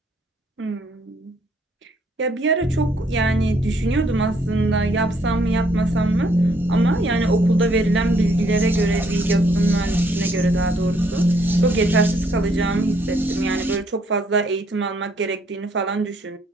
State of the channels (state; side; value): normal; both; correlation 0.68